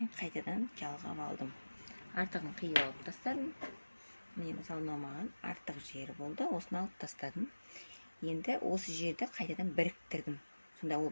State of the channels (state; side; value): inverted; both; correlation -1.00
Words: қайтадан жалғап алдым. Артығын қиып алып тастадым. Міне мысалы маған артық жері болды, осыны алып тастадым. Енді осы жерді қайтадан біріктірдім. Сонда ол